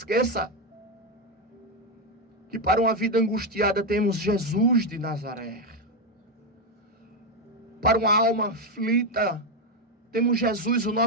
que para uma vida angustiada temos Jesus de Nazaré. Para uma alma aflita, temos Jesus, o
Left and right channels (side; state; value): both; normal; correlation 0.07